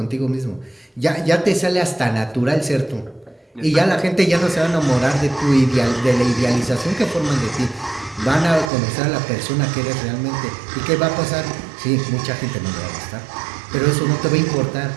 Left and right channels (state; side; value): drops out; left; at 8.7 s